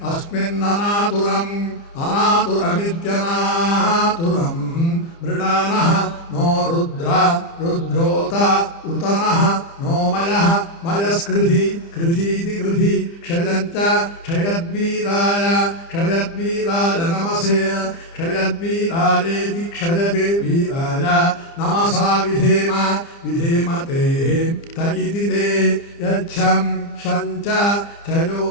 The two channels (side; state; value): right; late; 30 ms